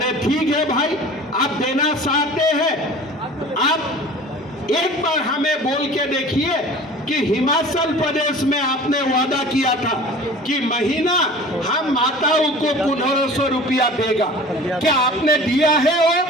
ठीक है भाई, आप देना चाहते हैं, आप एक बार हमें बोल के देखिए कि हिमाचल प्रदेश में आपने वादा किया था कि महीना हम माताओं को 1500 रुपया देगा, क्या आपने दिया है?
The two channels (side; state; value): both; normal; correlation 0.42